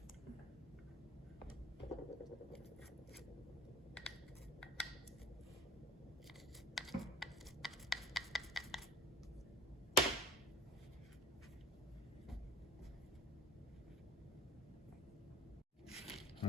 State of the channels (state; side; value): normal; both; correlation 0.42